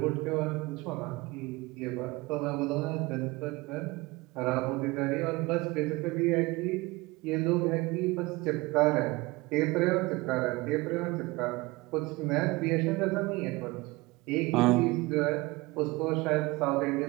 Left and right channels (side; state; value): left; quieter; 22.6 dB